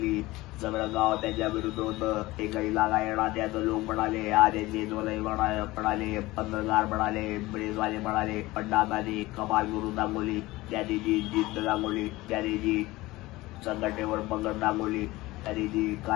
सगळं गाव त्याच्या विरुद्ध होतं। एकही लागा येणार त्याचं लोक म्हणाले, आरे म्हणाले, पत्रकार म्हणाले, प्रेसवाले म्हणाले, पण दादाने कमाल करून दाखवली। त्याने जी जिद्द दाखवली, त्याने जी संघटनेवर पकड दाखवली, त्याने जी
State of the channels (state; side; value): quieter; right; 19.5 dB